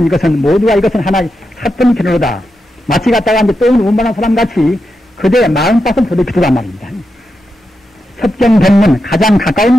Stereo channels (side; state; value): both; normal; correlation 0.87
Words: 이것은 모두가 이것은 하나의 사건 견으로다. 마치 갖다가 이제 똥을 운반한 사람 같이 그대의 마음밭을 더럽히더란 말입니다. 섭경 법문, 가장